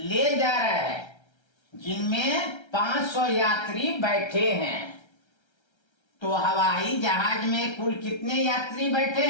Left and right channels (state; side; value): late; right; 1.3 ms